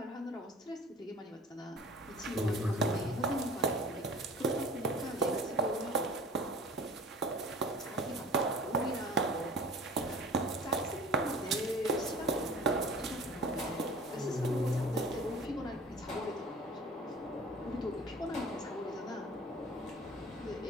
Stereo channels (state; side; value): normal; both; correlation 0.44